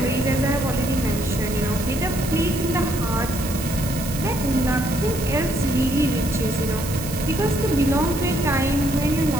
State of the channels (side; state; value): right; noise; hiss, 10 dB below the sound